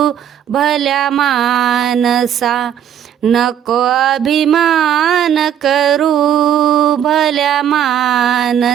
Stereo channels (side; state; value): left; quieter; 9.6 dB